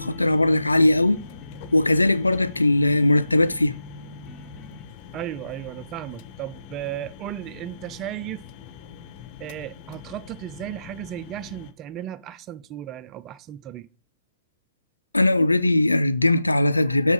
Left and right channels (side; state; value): both; inverted; correlation -0.89